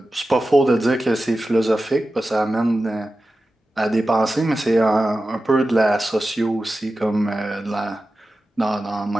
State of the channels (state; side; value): normal; both; correlation 0.93